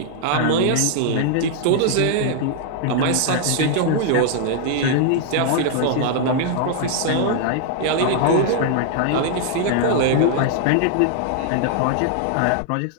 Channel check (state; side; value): different; both; correlation -0.01